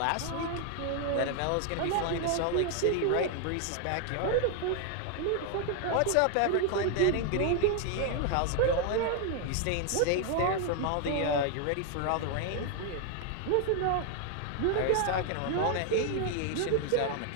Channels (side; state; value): both; different; correlation 0.01